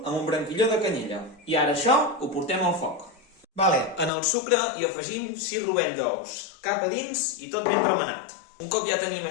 amb un branquilló de canyella. I ara això ho portem al foc. En el sucre hi afegim 6 rovell d'ous, cap a dins i tot ben remenat. Un cop ja tenim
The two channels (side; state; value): right; drops out; at 4.1 s